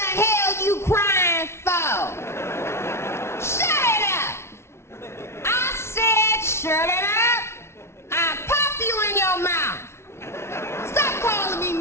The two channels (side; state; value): right; late; 0.13 ms